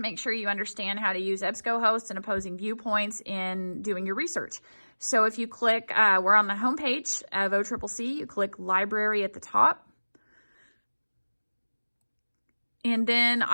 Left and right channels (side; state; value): both; inverted; correlation -1.00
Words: sure you understand how to use EbscoHost and opposing viewpoints in doing your research. So if you click, we're on the home page of OCCC, you click Library at the top. And then